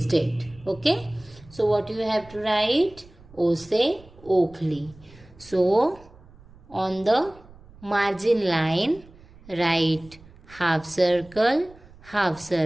date. Okay? So, what you have to write? Ose Oakley. So, on the margin line, write half circle,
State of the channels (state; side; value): noise; right; rumble, 23 dB below the sound